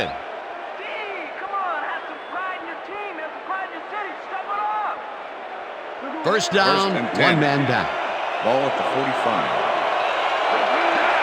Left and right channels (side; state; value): both; identical; correlation 1.00